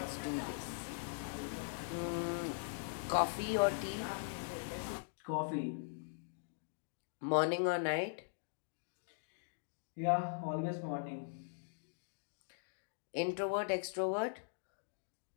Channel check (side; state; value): right; silent; digital silence